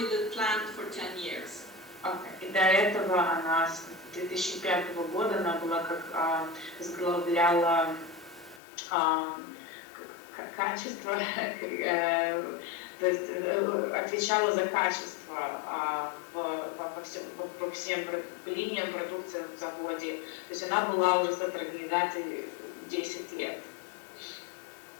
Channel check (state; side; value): drops out; right; at 8.6 s